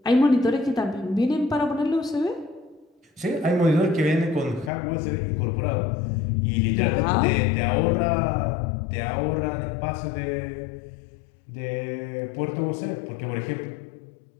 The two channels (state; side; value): drops out; right; at 4.7 s